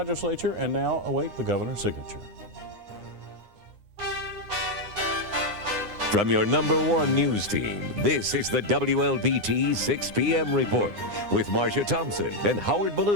and now await the governor's signature. From your #1 news team, this is the WLBT 6 p.m. report with Marcia Thompson and Howard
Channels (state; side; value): late; left; 9.6 ms